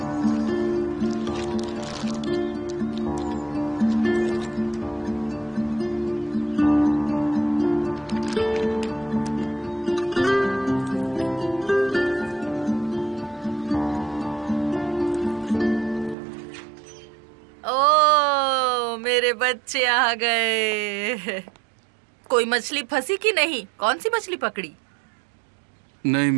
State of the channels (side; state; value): left; drops out; at 16.2 s